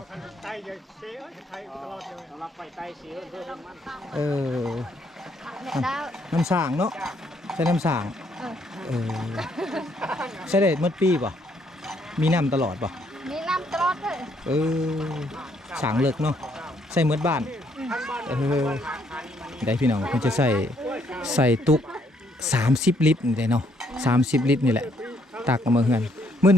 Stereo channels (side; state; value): both; normal; correlation 0.70